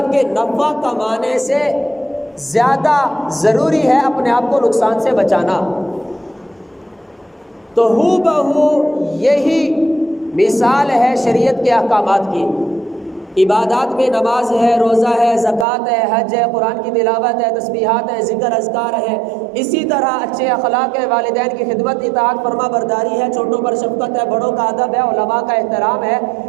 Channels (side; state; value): left; drops out; at 15.7 s